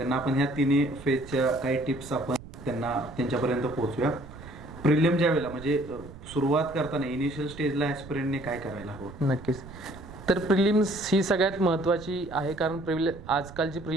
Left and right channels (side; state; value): right; noise; rumble, 16 dB below the sound